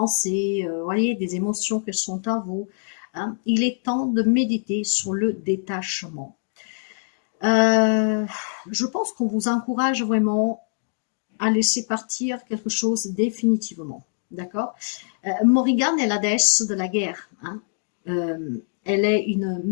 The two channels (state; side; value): silent; right; digital silence